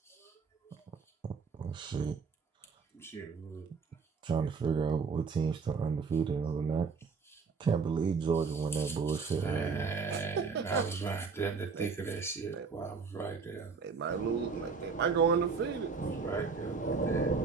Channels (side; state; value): left; quieter; 5.1 dB